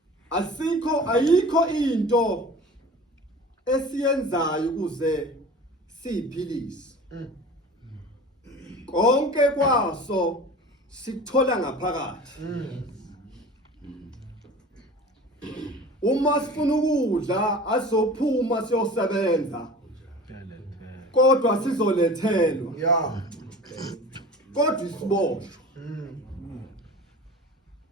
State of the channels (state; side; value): normal; both; correlation 0.39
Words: ayikho into esiyenzayo ukuze siphilise. Konke kwaso sikuthola ngaphakathi. Uma sifuna ukudla asophuma siyosebenza kodwa sizolethelwa. Kodwa isiboshwa